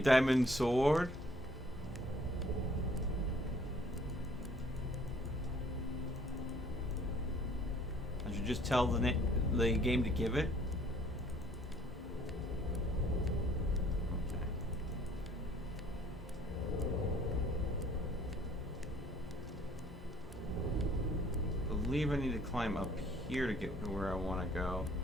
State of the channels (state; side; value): normal; both; correlation 0.59